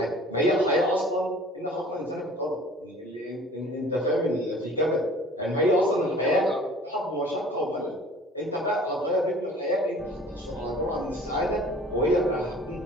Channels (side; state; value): both; normal; correlation 0.48